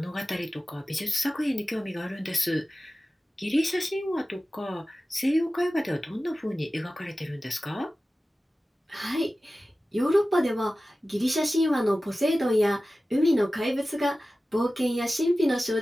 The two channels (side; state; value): both; normal; correlation 0.95